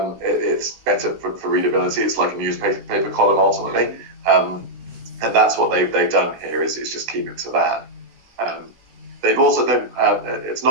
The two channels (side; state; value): left; late; 16 ms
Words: better for readability. It's like a newspaper column ultimately, and that's what they've done here. Is just keep it to that. They've also it's